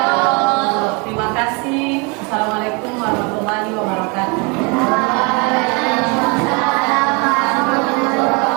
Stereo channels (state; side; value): quieter; left; 30.9 dB